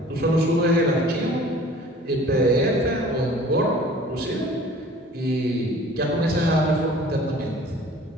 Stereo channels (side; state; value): both; normal; correlation 0.48